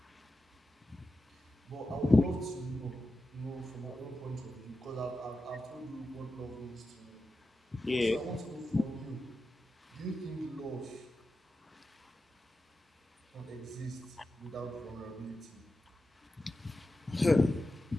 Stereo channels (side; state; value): both; normal; correlation 0.91